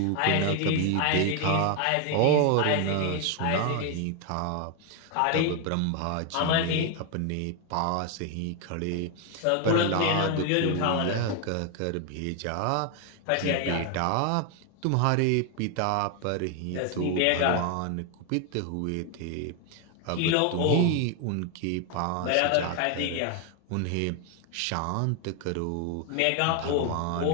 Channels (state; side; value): different; both; correlation 0.01